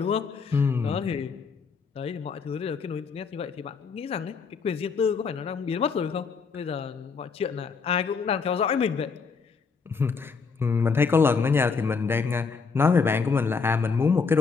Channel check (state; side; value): quieter; right; 5.2 dB